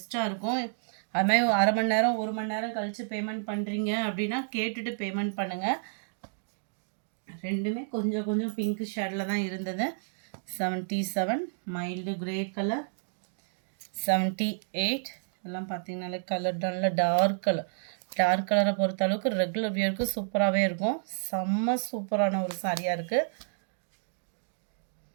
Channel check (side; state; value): left; silent; digital silence